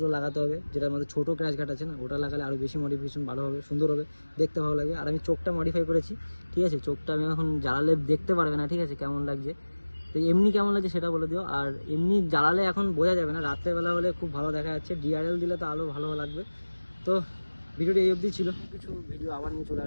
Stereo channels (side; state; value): both; inverted; correlation -1.00